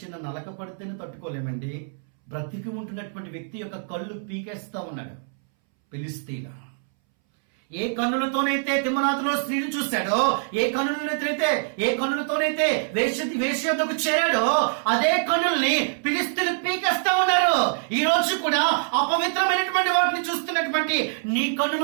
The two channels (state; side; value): silent; left; 62 dB below the other